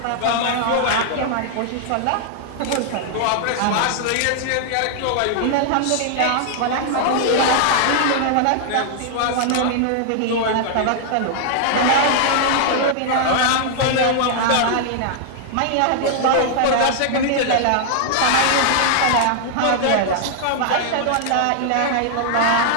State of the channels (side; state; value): both; different; correlation -0.01